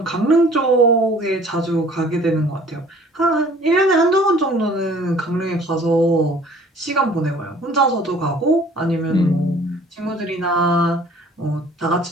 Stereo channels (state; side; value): normal; both; correlation 0.52